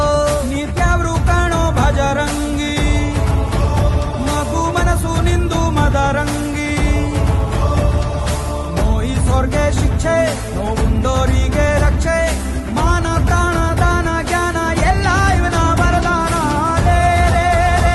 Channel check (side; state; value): both; identical; correlation 1.00